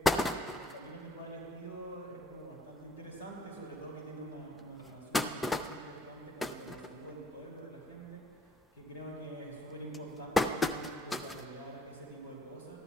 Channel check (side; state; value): both; normal; correlation 0.61